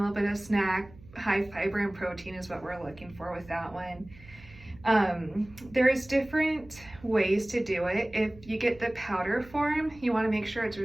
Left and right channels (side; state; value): right; noise; hum, 22 dB below the sound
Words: bit of snack. High fiber and protein is what we're looking for with that one. There's different ways to do it. If you get the powder form, you want to make sure it's